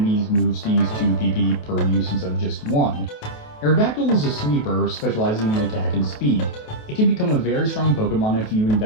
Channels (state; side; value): late; right; 28 ms